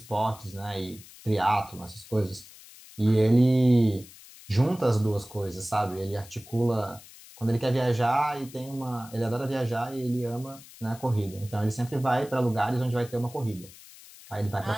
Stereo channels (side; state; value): left; noise; hiss, 20 dB below the sound